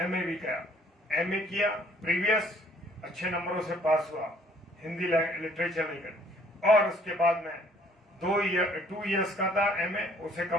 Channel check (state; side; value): normal; both; correlation 0.60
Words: भी किया, एमए किया, प्रीवियस अच्छे नंबरों से पास हुआ हिंदी लिटरेचर लेकर। और उसके बाद मैं 2 इयर्स का था एमए, उसे